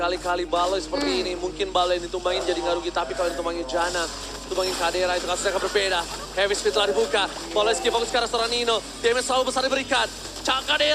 Baloy seperti ini, mungkin Baloy yang ditumbangin jadi nggak rugi. Tapi kalau ditumbangin Jana, tumbangin Kadera, itu kasusnya akan berbeda. Heavy speed telah dibuka. Baloyski fokus ke arah seorang Nino. Damage selalu besar diberikan. Cak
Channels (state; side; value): identical; both; correlation 1.00